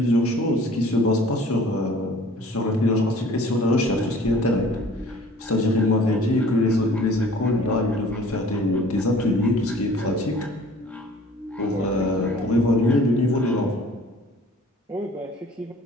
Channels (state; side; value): normal; both; correlation 0.50